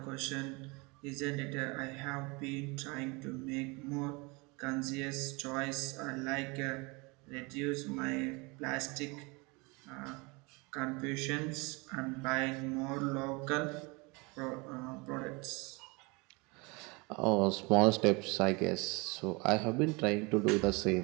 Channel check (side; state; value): left; quieter; 27.4 dB